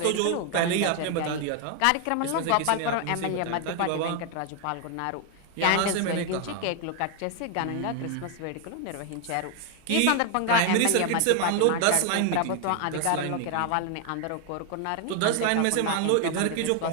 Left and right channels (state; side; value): different; both; correlation 0.00